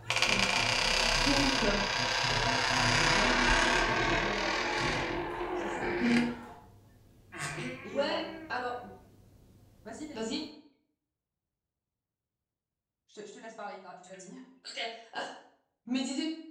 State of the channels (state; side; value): identical; both; correlation 1.00